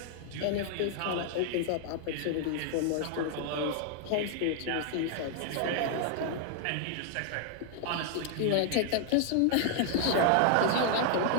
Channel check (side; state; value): both; different; correlation 0.00